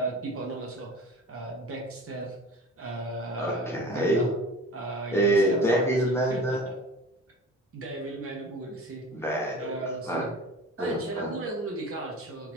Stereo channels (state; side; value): normal; both; correlation 0.39